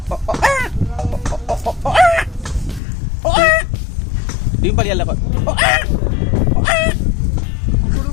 ডিম পাড়ি আল্লাহ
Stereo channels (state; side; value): drops out; right; at 2.8 s